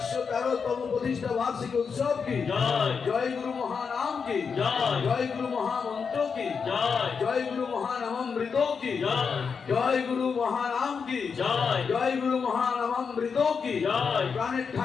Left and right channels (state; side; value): quieter; right; 5.8 dB